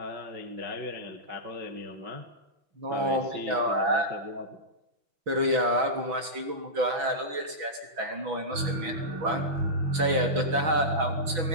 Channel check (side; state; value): left; late; 6.0 ms